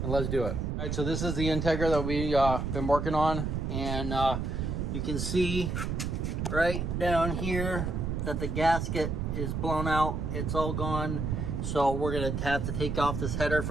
and let's do it. All right, so this is the Integra that we've been working on. And you can see right down here that the gasket is blown out. It's all gone. So we're gonna have to take off this header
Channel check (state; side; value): noise; right; rumble, 2 dB below the sound